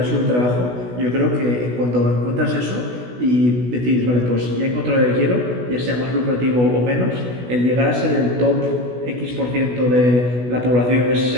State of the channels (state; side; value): late; left; 16 ms